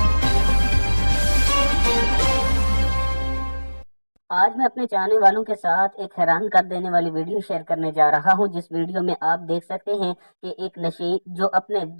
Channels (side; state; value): both; inverted; correlation -1.00